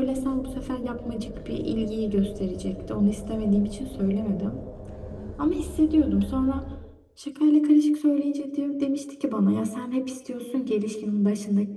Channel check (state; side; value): identical; both; correlation 1.00